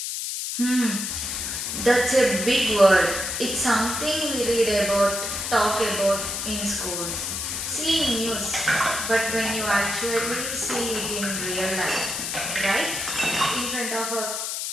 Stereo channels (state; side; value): noise; left; hiss, 3 dB below the sound